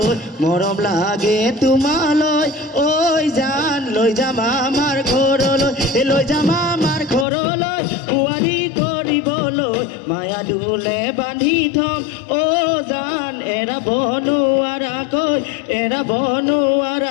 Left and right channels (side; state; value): right; drops out; at 7.2 s